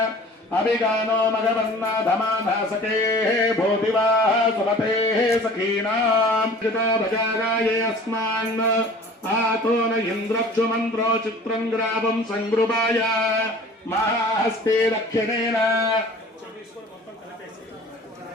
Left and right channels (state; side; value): normal; both; correlation 0.45